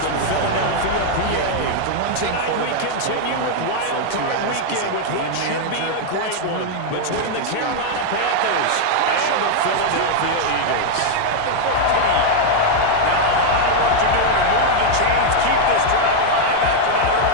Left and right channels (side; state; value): both; different; correlation 0.00